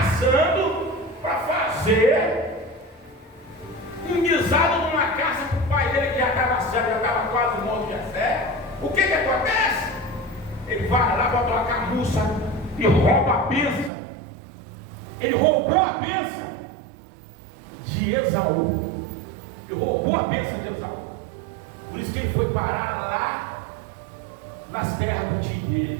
para fazer um guisado numa casa para o pai dele, que já estava cego, já estava quase morto de fé. O que acontece? Ele vai lá, bota uma camuça e rouba a bênção. Ele roubou a bênção de Esaú. Ele roubou a bênção de Esaú. Por isso que ele foi parar lá nas terras do tio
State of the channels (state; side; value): drops out; left; at 13.9 s